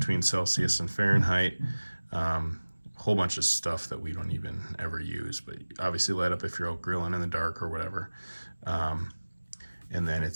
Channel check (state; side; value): inverted; both; correlation -1.00